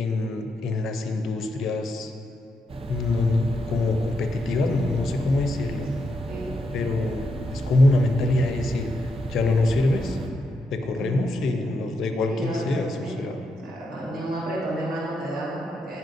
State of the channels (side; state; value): both; normal; correlation 0.82